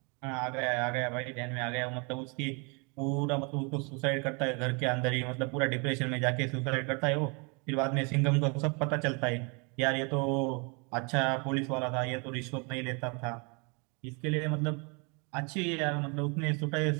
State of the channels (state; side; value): quieter; left; 32.7 dB